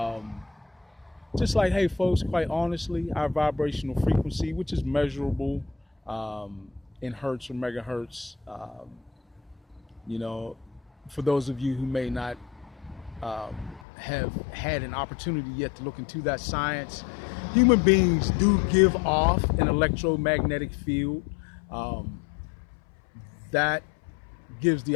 just like, hey, folks, quite honestly, our vibrational frequency, which is measurable in hertz or megahertz, you know, for those of you who may not have had an opportunity yet to look into that science, human beings do give off an electromagnetic field um, that gives the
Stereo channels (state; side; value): drops out; right; at 13.8 s